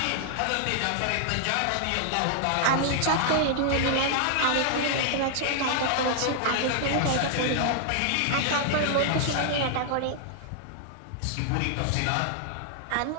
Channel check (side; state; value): both; different; correlation 0.00